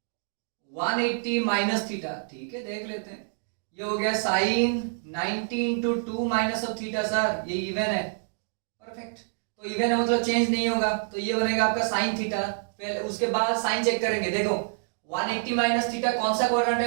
180 माइनस थीटा, ठीक है देख लेते हैं। ये हो गया sine 90 into 2 minus of theta, sir ये इवन है, परफेक्ट। तो इवन है मतलब चेंज नहीं होगा, तो ये बनेगा आपका साइन थीटा। पहले उसके बाद साइन चेक करेंगे, देखो 180 माइनस थीटा कौन सा क्वाड्रेंट है,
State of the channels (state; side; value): silent; left; digital silence